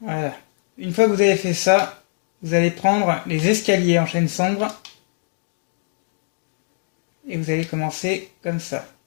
Une fois que vous avez fait ça, vous allez prendre les escaliers en chêne sombre et vous allez commencer comme ça.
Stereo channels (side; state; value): right; silent; digital silence